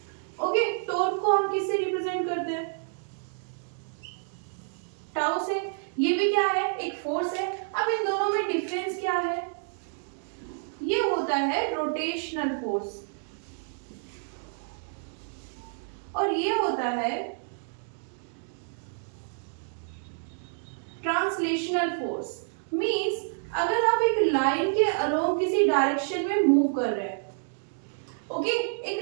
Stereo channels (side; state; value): left; silent; digital silence